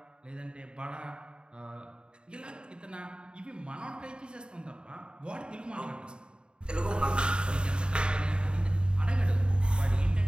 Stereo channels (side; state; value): left; late; 0.051 ms